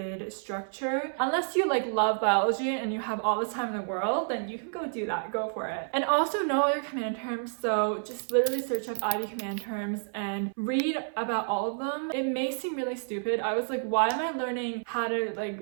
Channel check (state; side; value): silent; left; 58 dB below the other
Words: structure. Unless you love biology and you have all the time in the world, then you can go do that, go for it. And also know all your command terms, so just literally search up IB command terms and read about all of them. It may seem really stupid. I was like, why am I learning how to